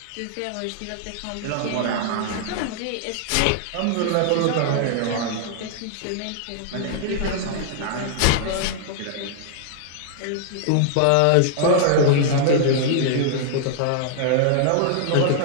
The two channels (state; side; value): different; both; correlation -0.01